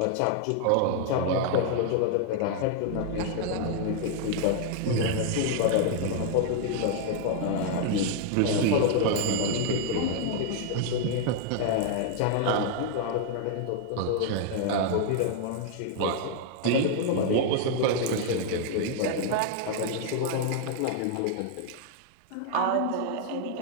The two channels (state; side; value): different; both; correlation 0.00